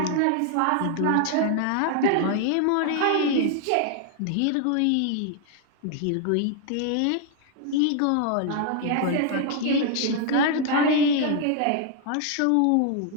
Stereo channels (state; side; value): different; both; correlation 0.00